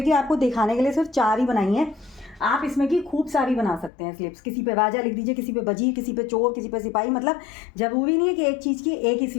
आपको दिखाने के लिए सिर्फ 4 ही बनाई हैं। आप इसमें की खूब सारी बना सकते हैं स्लिप्स। किसी पे राजा लिख दीजिए, किसी पे वजीर, किसी पे चोर, किसी पे सिपाही। मतलब ज़रूरी नहीं है कि एक चीज़ की एक ही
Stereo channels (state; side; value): drops out; right; at 3.9 s